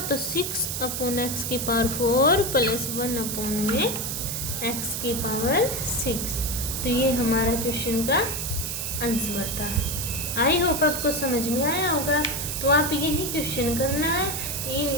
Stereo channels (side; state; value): right; noise; hiss, 3 dB below the sound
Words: तो 6/x की पावर 4 प्लस 1/x की पावर 6। तो ये हमारा क्वेश्चन का आंसर था। आई होप आपको समझ में आया होगा। तो आप यही क्वेश्चन करना है